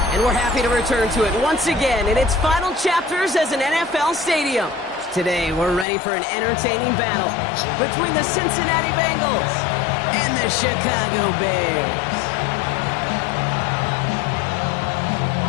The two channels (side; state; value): right; drops out; at 5.9 s